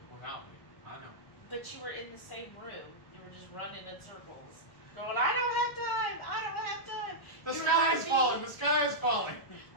Without me, I know. But you were in the same room. You were just running in circles. Going, I don't have time. I don't have time. The sky is falling. The sky is falling.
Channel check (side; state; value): right; late; 1.0 ms